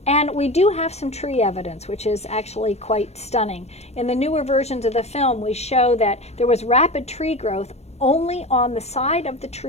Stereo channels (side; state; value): right; late; 0.31 ms